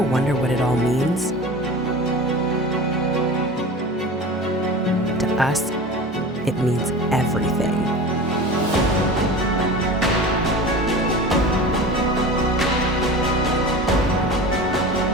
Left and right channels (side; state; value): both; normal; correlation 0.34